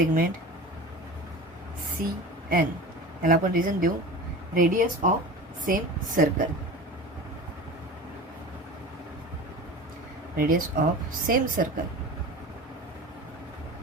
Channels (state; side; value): normal; both; correlation 0.34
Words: CN. याला आपण रिझन देऊ, radius of same circle. Radius of same circle.